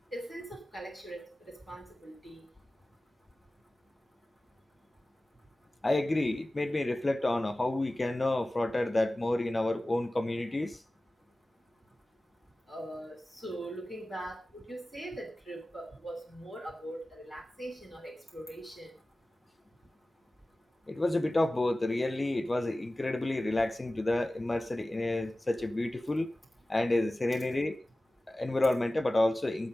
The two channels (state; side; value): normal; both; correlation 0.97